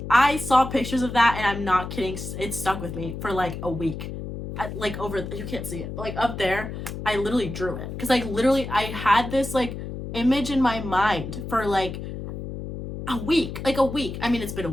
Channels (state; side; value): noise; left; hum, 8 dB below the sound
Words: I saw pictures of that, and I'm not kidding, it stuck with me for like a week. You can't see it, but like up there, I literally drew it. Because I had this like image in my mind for like a week. I mean, it's been a